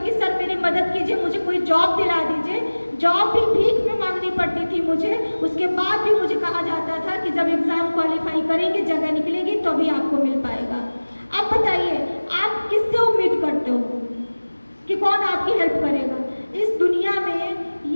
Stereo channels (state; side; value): inverted; both; correlation -1.00